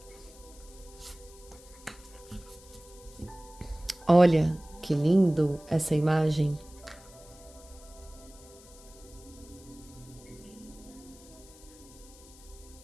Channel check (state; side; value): noise; left; hiss, 22 dB below the sound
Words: Olha que lindo essa imagem.